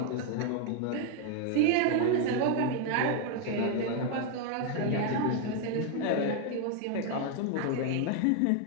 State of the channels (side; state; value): both; different; correlation 0.01